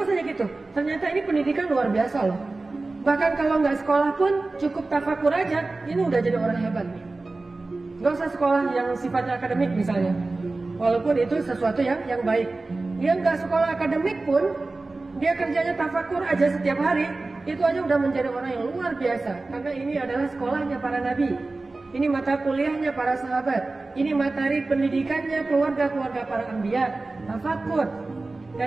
aja gitu. Ternyata ini pendidikan luar biasa loh. Bahkan kalau nggak sekolah pun cukup tafakur aja, ini udah jadi orang hebat nih. Gak usah sekolah yang sifatnya akademik misalnya. Walaupun itu sesuatu yang baik. Dia nggak sekolah akademik pun, dia kerjanya tafakur aja setiap hari, itu aja udah menjadi orang yang luar biasa. Karena ini adalah sekolahnya para nabi. Ini mata kuliahnya para sahabat. Ini materi pendidikannya keluarga-keluarga para anbiya. Tafakur.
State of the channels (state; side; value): quieter; left; 3.3 dB